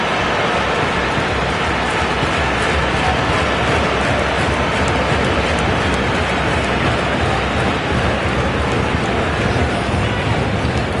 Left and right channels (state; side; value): identical; both; correlation 1.00